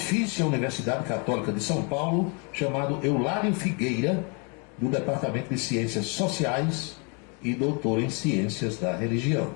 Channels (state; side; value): quieter; right; 33.8 dB